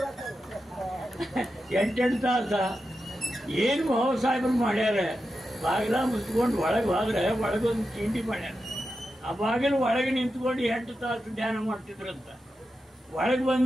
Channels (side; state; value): both; normal; correlation 0.89